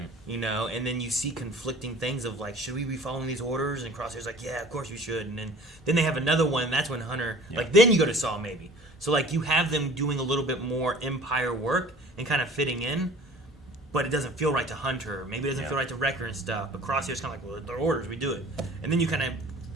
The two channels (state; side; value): normal; both; correlation 0.47